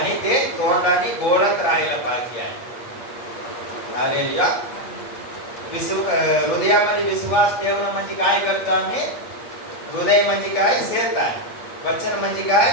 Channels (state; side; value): late; right; 8.4 ms